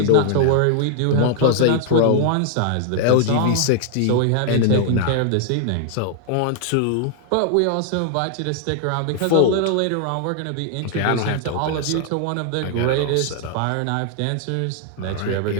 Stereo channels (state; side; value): different; both; correlation 0.00